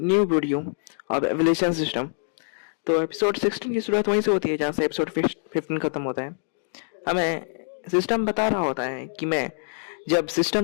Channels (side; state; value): right; silent; digital silence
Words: video of evolution system. तो episode 16 की शुरुआत वहीं से होती है जहाँ से एपिसोड 15 खत्म होता है। हमें सिस्टम बता रहा होता है कि मैं जब